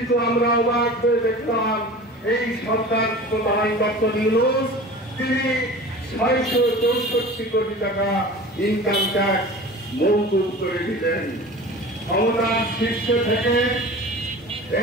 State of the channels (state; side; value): normal; both; correlation 0.38